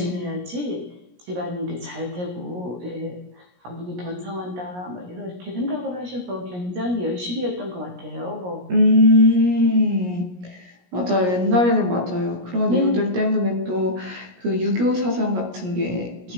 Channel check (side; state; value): left; late; 17 ms